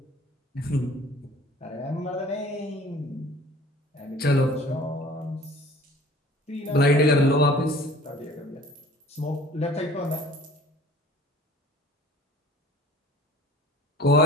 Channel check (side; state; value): both; normal; correlation 0.49